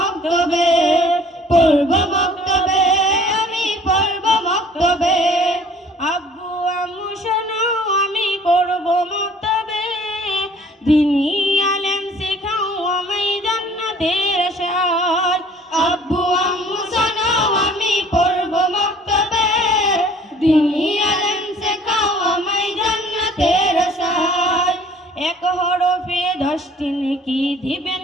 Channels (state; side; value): normal; both; correlation 0.53